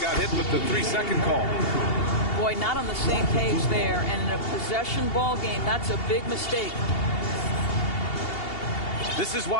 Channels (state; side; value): late; right; 2.8 ms